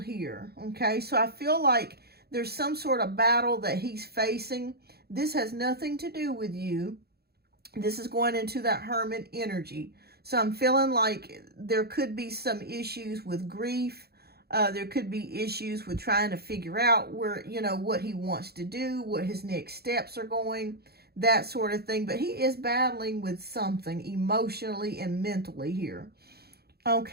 here, okay? So I feel like there's some sort of battle that he's facing. This has nothing to do with you. This is going into that Hermit energy. So I'm feeling like there could be some issues with grief. There could be issues with trying to figure out where, you know, what he wants to do, what his next steps are going, that sort of thing. But he is battling with something emotionally and mentally here.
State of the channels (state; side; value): late; left; 0.46 ms